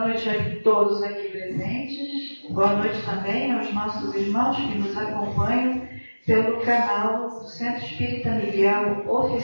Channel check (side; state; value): both; inverted; correlation -1.00